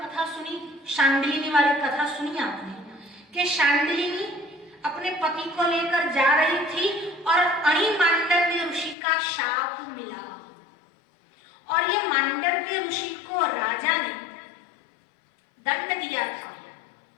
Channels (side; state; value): right; drops out; at 9.0 s